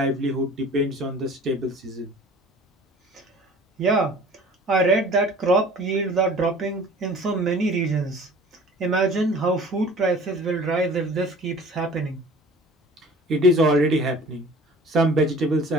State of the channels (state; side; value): normal; both; correlation 0.47